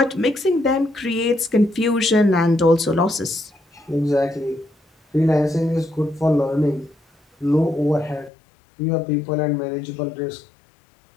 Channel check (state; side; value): drops out; right; at 8.3 s